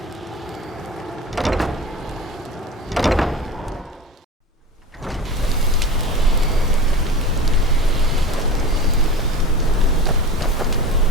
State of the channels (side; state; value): both; normal; correlation 0.32